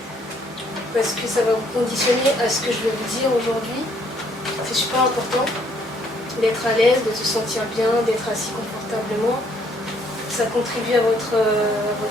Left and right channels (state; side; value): normal; both; correlation 0.66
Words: Parce que ça va vous conditionner à ce que je vais vous dire aujourd'hui. C'est super important d'être à l'aise, de se sentir bien, d'être assis confortablement. Ça contribue à votre